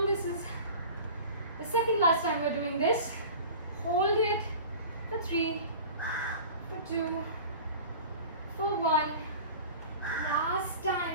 This is the second last time we're doing this. Hold it for 3, for 2, for 1. Last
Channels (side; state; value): both; inverted; correlation -0.39